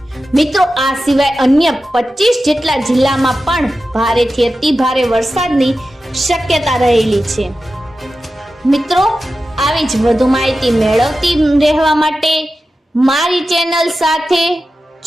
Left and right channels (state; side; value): normal; both; correlation 0.93